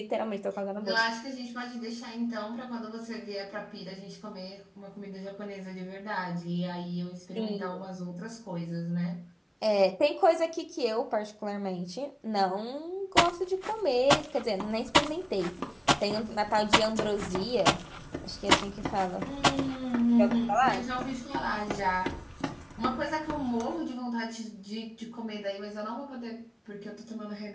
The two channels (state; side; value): identical; both; correlation 1.00